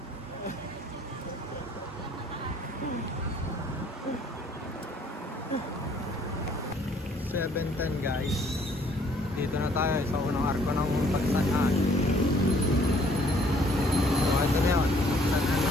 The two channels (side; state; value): both; normal; correlation 0.61